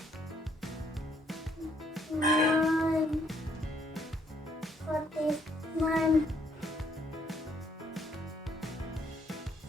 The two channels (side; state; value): both; normal; correlation 0.68